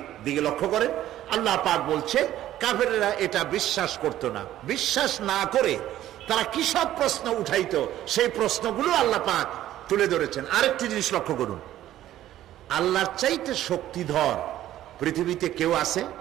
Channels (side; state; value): left; quieter; 13.1 dB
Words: দিকে লক্ষ্য করে আল্লাহ পাক বলছে, কাফেররা এটা বিশ্বাস করতো না, বিশ্বাস না করে তারা কি সব প্রশ্ন উঠাইতো, সেই প্রশ্নগুলো আল্লাহ পাক তুলে ধরেছেন। আরেকটি জিনিস লক্ষ্য করুন, আল্লাহর চাইতে শক্তিধর পৃথিবীতে কেউ আছে?